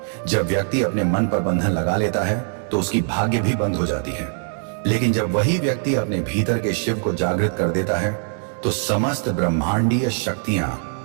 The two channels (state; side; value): silent; left; 56 dB below the other